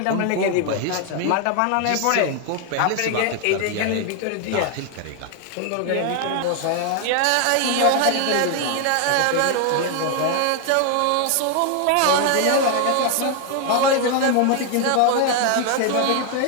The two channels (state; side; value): different; both; correlation 0.00